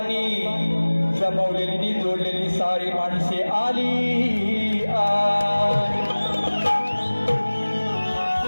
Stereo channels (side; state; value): both; inverted; correlation -1.00